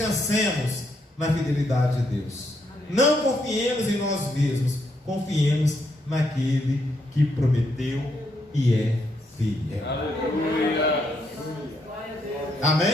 na fidelidade de Deus. Não confiemos em nós mesmos, confiemos naquele que prometeu e é fiel. Aleluia.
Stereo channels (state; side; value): normal; both; correlation 0.77